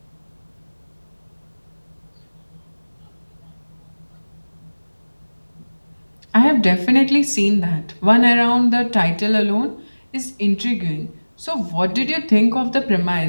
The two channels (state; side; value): inverted; both; correlation -1.00